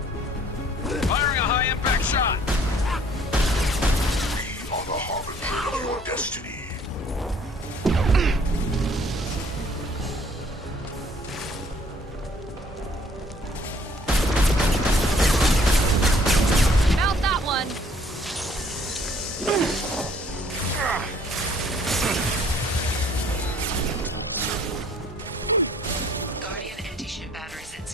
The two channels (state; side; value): normal; both; correlation 0.59